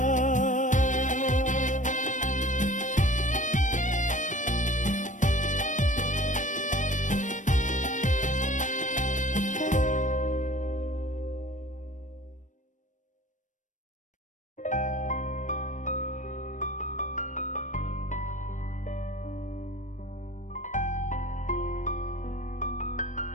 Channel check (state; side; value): late; right; 0.37 ms